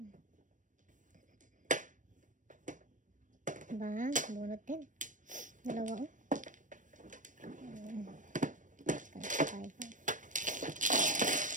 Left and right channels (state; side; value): late; left; 0.37 ms